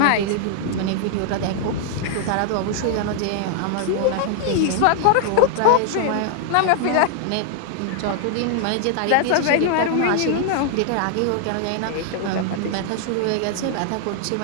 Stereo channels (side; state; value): both; different; correlation 0.00